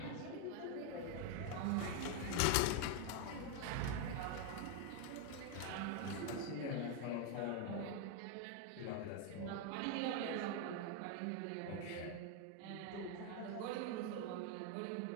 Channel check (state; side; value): different; both; correlation 0.01